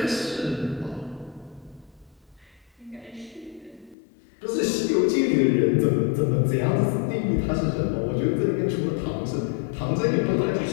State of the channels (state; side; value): drops out; right; at 4.0 s